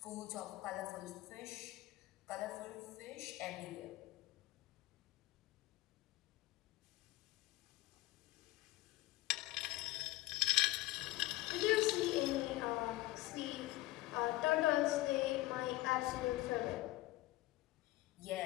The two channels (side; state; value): right; quieter; 17.9 dB